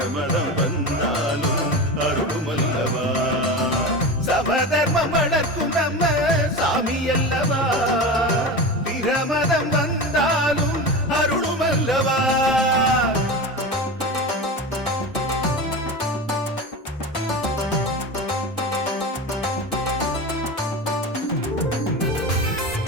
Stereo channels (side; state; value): both; normal; correlation 0.26